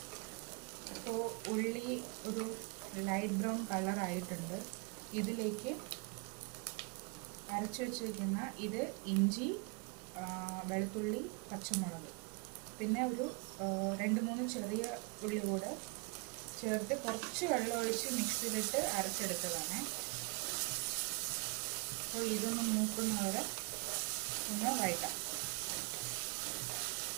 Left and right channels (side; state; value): left; quieter; 31.5 dB